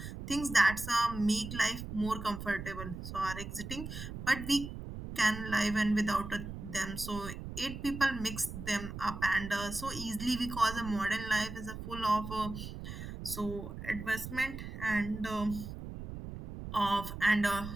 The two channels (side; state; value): right; noise; rumble, 9 dB below the sound